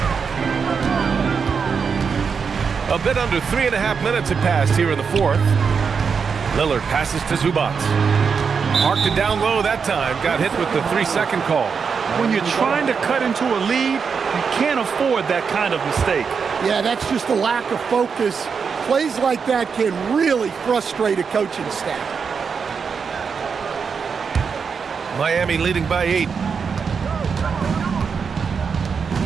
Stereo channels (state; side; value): quieter; left; 5.9 dB